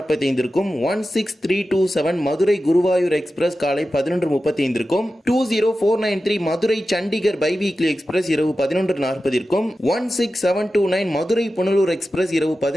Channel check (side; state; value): both; normal; correlation 0.93